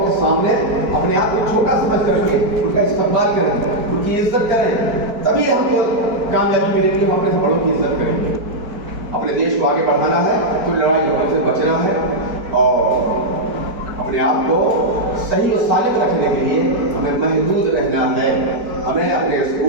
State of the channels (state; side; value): late; left; 4.5 ms